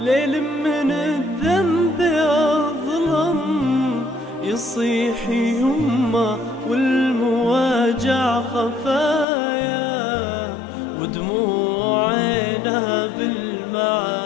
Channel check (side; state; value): right; drops out; at 9.2 s